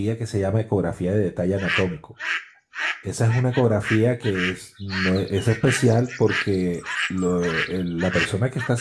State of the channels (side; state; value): both; identical; correlation 1.00